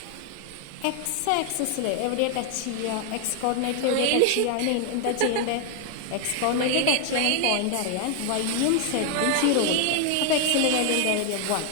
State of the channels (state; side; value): different; both; correlation 0.00